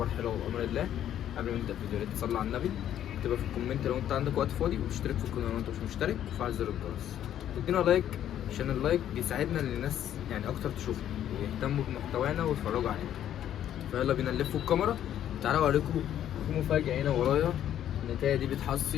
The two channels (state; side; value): quieter; right; 10.9 dB